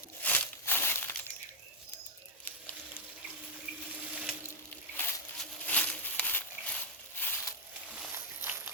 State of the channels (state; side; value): normal; both; correlation -0.03